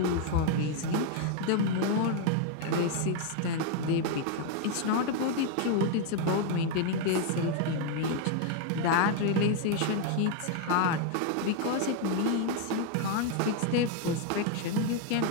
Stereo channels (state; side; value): different; both; correlation 0.01